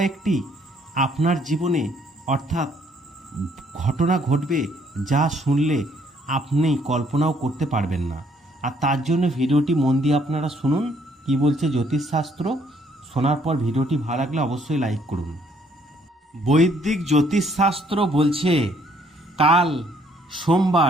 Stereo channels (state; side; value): normal; both; correlation 0.66